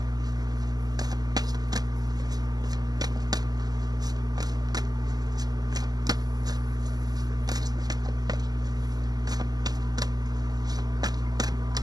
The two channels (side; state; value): left; late; 0.19 ms